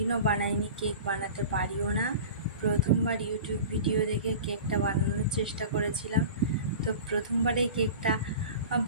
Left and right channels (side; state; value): both; inverted; correlation -0.36